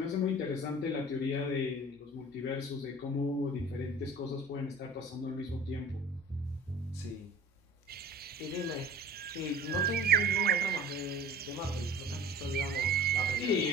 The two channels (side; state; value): both; normal; correlation 0.43